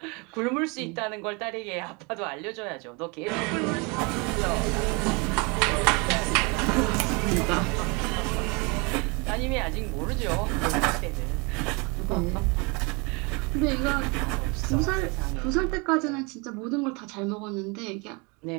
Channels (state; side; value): quieter; left; 29.7 dB